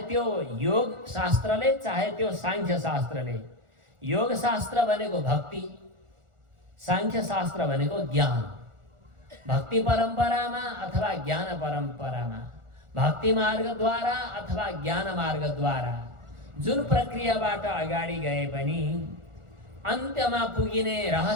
त्यो योग शास्त्रले, चाहे त्यो सांख्य शास्त्रले। योग शास्त्र भनेको भक्ति, सांख्य शास्त्र भनेको ज्ञान। भक्ति परम्परामा अथवा ज्ञान परम्परामा, भक्ति मार्गद्वारा अथवा ज्ञान मार्गद्वारा जुन प्रक्रियाबाट अगाडि गए पनि अन्त्यमा पुगिने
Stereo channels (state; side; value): late; left; 1.4 ms